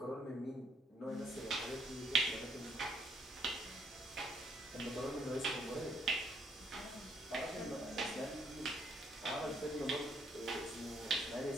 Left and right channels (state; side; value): normal; both; correlation 0.69